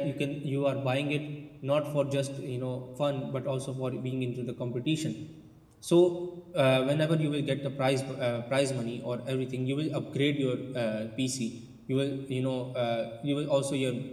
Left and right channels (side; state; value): both; identical; correlation 1.00